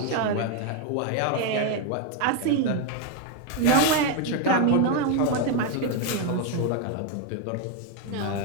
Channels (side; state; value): both; different; correlation 0.02